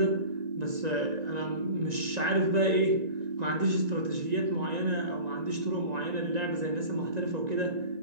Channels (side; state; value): left; late; 1.9 ms